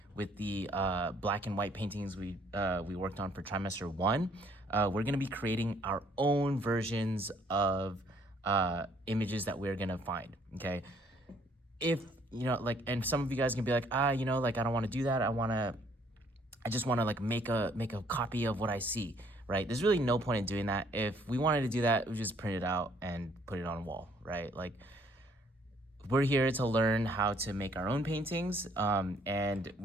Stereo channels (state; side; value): normal; both; correlation 0.64